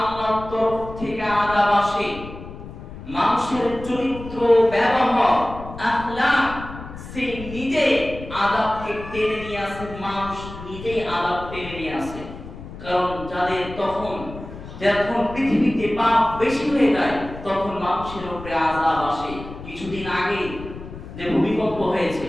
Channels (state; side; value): noise; left; rumble, 13 dB below the sound